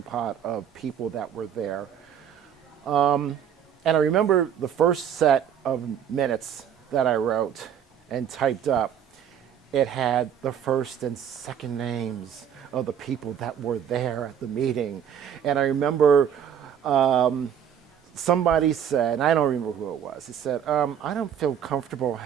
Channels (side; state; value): left; quieter; 8.9 dB